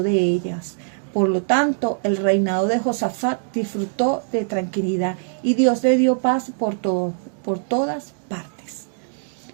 de ellas. Por lo tanto, el reinado de Josafat disfrutó de tranquilidad y Dios le dio paz por todas partes.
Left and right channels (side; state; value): left; silent; digital silence